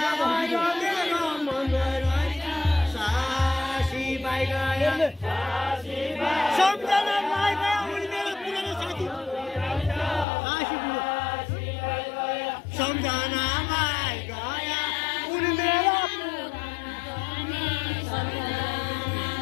मेरो मङ्गल रहेछ साजी भाइ गयो सम्झना भाइ गयो उनी मेरो पुरानो साथी सासी बुढो सम्झना भाइ गयो उनी मेरो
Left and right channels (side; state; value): right; drops out; at 10.2 s